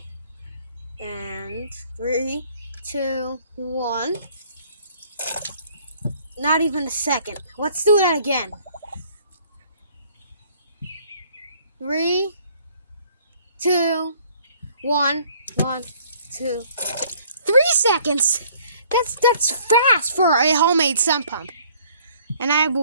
And 3, 2, 1. Not even a second. Let's do that again. 3, 2, 1. 1, 2, 3 seconds. That's fast for a homemade sump pump. And I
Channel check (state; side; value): inverted; both; correlation -0.59